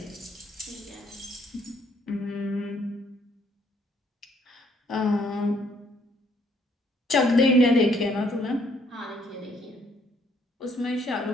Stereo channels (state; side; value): normal; both; correlation 0.66